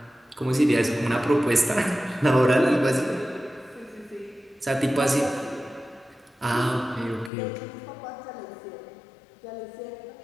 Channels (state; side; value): drops out; right; at 7.3 s